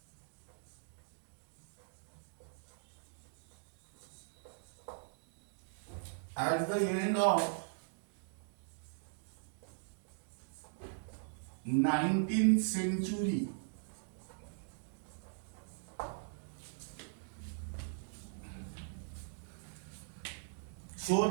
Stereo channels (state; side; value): silent; left; digital silence